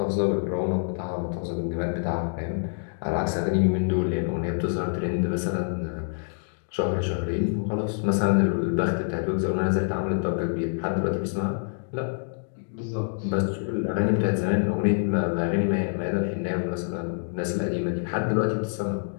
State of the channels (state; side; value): silent; right; digital silence